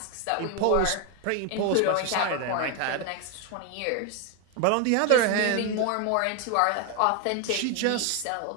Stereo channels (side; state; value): both; different; correlation 0.01